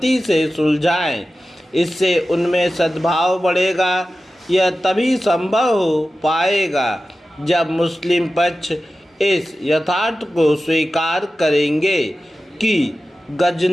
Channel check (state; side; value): normal; both; correlation 0.94